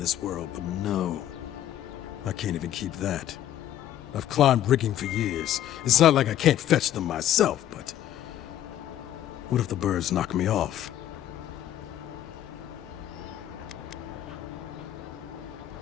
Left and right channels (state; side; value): quieter; right; 11.8 dB